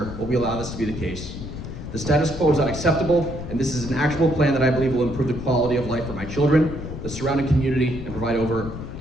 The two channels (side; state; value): left; noise; rumble, 9 dB below the sound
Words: will we allow this to be the case? The status quo is unacceptable, and this is an actual plan that I believe will improve the quality of life for my children, the surrounding community, and provide over